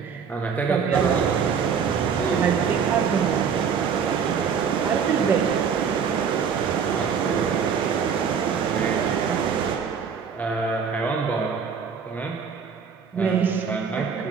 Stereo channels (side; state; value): left; quieter; 6.6 dB